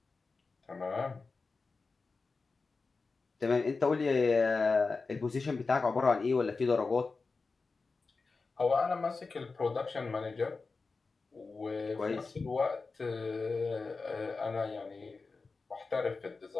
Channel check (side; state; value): right; quieter; 4.1 dB